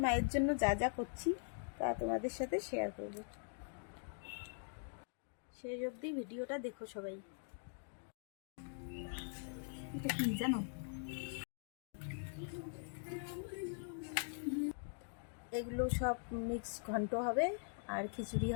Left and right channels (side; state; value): right; silent; digital silence